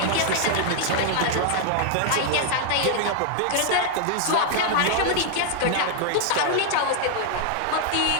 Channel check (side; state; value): both; different; correlation 0.00